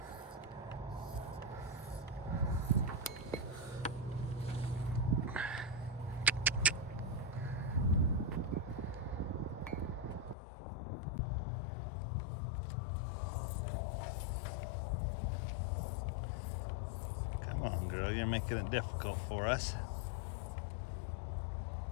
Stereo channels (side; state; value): right; drops out; at 10.4 s